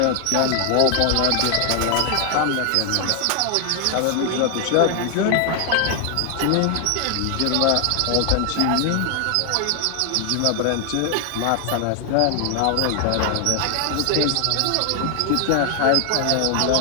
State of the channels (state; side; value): different; both; correlation 0.00